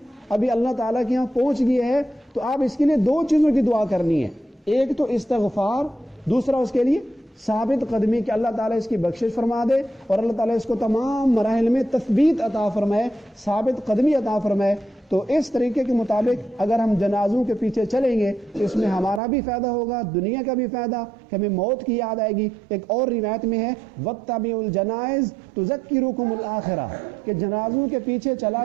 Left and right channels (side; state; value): left; drops out; at 19.2 s